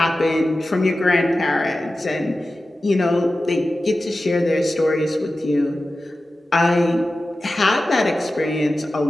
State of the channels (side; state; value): both; normal; correlation 0.94